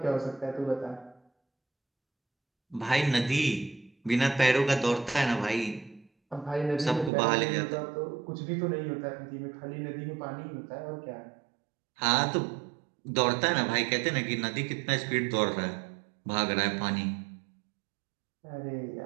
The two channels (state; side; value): drops out; left; at 7.1 s